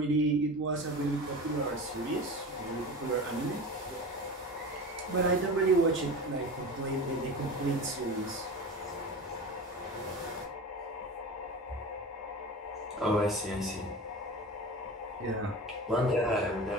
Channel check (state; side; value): normal; both; correlation 0.31